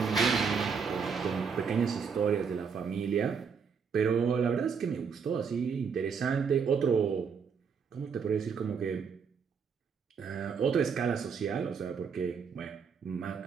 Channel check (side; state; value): left; quieter; 6.2 dB